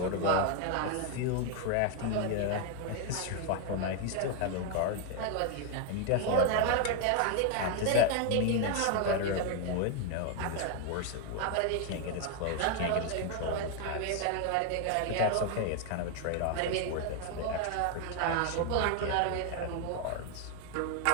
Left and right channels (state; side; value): different; both; correlation 0.01